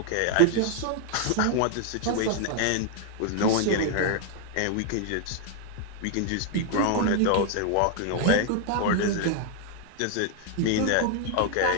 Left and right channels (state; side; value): different; both; correlation 0.00